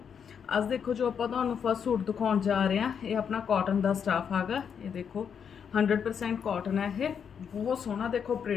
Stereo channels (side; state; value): right; quieter; 7.3 dB